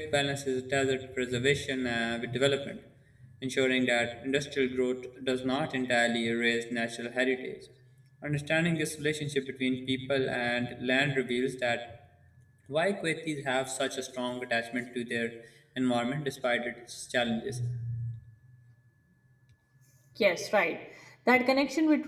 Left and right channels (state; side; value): identical; both; correlation 1.00